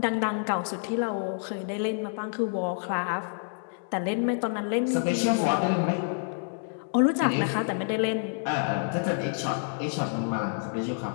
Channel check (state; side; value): silent; right; 57 dB below the other